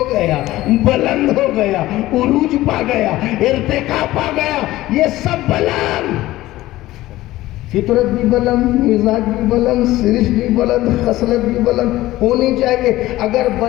گیا، بلند ہو گیا، عروج پا گیا، ارتقا پا گیا، یہ سب بلند، فطرت بھی بلند، مزاج بھی بلند، سرشت بھی بلند، خصلت بھی بلند ہونی چاہیے۔ اگر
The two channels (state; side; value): quieter; right; 16.6 dB